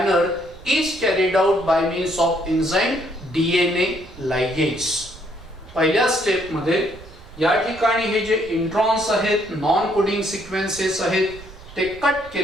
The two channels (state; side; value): noise; right; rumble, 19 dB below the sound